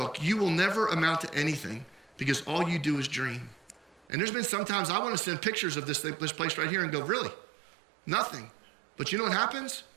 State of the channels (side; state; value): left; drops out; at 4.0 s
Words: you will never amount to anything because all you do is dream. And there's been sometimes I want to send pictures of this place right here and go, really? Nothing. But you know what happens?